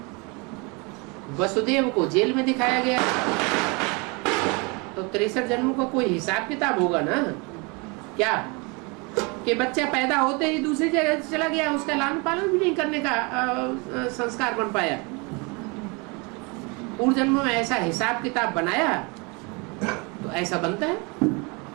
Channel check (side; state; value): left; quieter; 29.6 dB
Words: वसुदेव को जेल में दिखाया गया है। तो 63 जन्मों का कोई हिसाब किताब होगा ना। क्या कि बच्चा पैदा होते ही दूसरी जगह चला गया, उसका लालन पालन भी नहीं करने का संस्कार बन पाया। पूर्व जन्मों में ऐसा हिसाब किताब बनाया तो ऐसा बनता है।